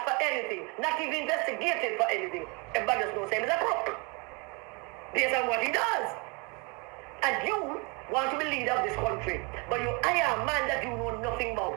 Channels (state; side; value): quieter; left; 31.2 dB